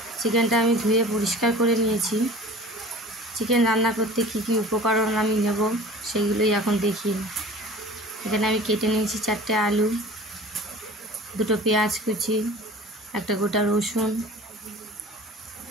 চিকেনটা আমি ধুয়ে পরিষ্কার করে নিয়েছি। চিকেন রান্না করতে কী কী উপকরণ আমি নেব সেগুলোই এখন দেখি। এখানে আমি কেটে নিয়েছি 4টে আলু, 2টো পেঁয়াজ কুচি, একটা গোটা রসুন,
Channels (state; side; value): normal; both; correlation 0.42